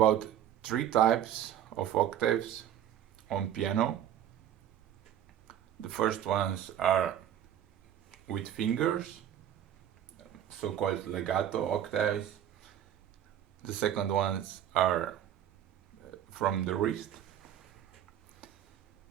three types of octaves on piano. The first ones are with fingers, so-called legato octaves. The second ones are from the wrist,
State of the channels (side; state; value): left; quieter; 10.6 dB